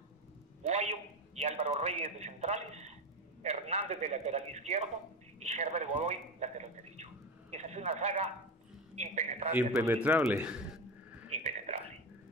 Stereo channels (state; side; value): normal; both; correlation 0.20